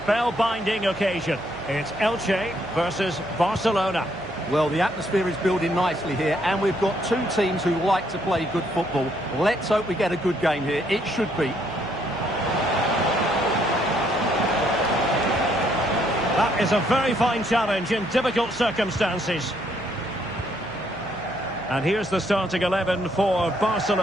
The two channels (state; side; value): noise; right; hum, 19 dB below the sound